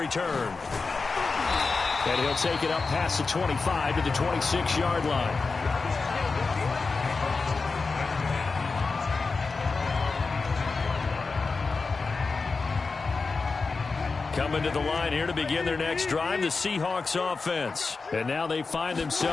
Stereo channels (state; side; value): quieter; right; 4.3 dB